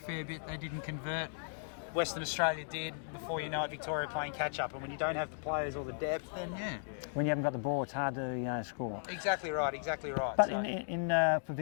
bit. They didn't convert. Western Australia did. Before you know it, Victoria playing catch-up. And when you don't have the players or the depth, then When you haven't got the ball, it's hard to score. Exactly right. But for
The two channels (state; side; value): silent; right; digital silence